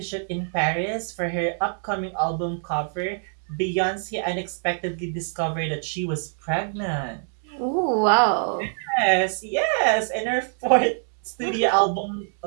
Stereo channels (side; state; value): left; silent; digital silence